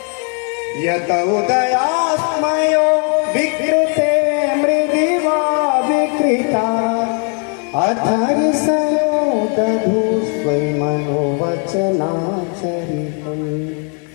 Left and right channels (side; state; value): right; quieter; 38.6 dB